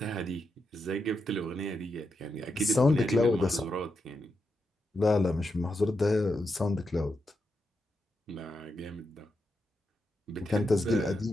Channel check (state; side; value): normal; both; correlation 0.85